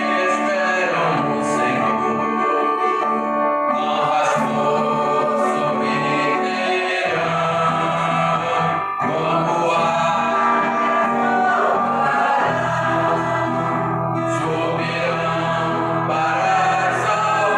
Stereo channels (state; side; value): identical; both; correlation 1.00